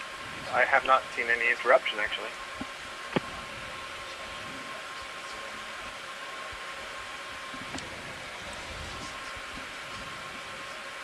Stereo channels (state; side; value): identical; both; correlation 1.00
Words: I have not seen any interruption, actually.